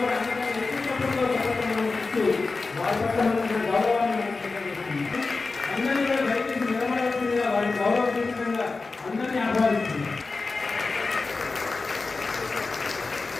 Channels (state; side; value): quieter; right; 3.9 dB